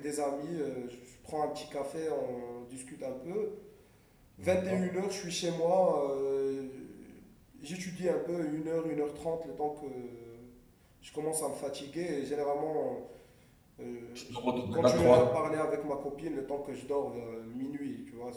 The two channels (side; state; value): both; identical; correlation 1.00